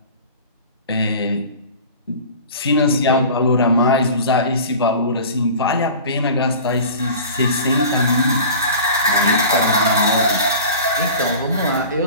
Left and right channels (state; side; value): inverted; both; correlation -0.39